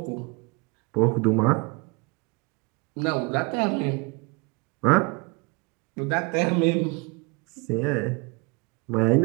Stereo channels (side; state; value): left; quieter; 28.6 dB